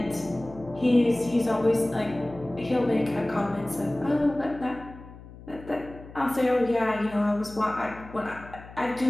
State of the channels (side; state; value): left; noise; hum, 17 dB below the sound